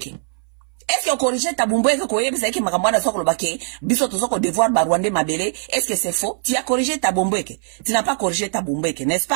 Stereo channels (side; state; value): left; silent; 60 dB below the other